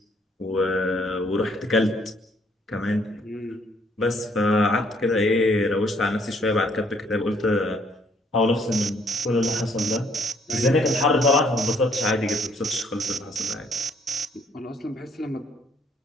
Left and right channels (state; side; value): normal; both; correlation 0.66